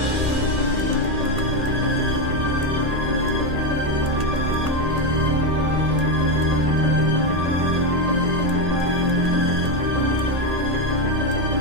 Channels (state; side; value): late; left; 1.8 ms